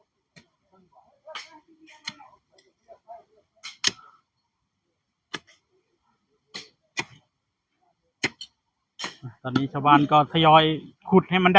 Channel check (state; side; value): identical; both; correlation 1.00